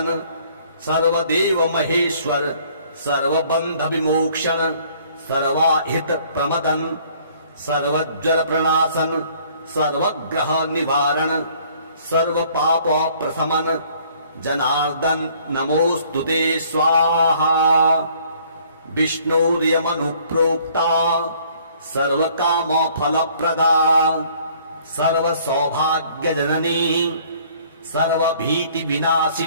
सर्वदेव महेश्वर सर्वबंध विमोक्षण सर्वाहित प्रमदन सर्वज्वर प्रणाशन सर्वग्रह निवारण सर्व पाप प्रशमन जनार्दन नमोस्तुते स्वाहा। विष्णुर्यमनुप्रोक्ता सर्वकाम फलप्रदा सर्व सौभाग्य जननी सर्वभीति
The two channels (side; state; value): both; inverted; correlation -0.58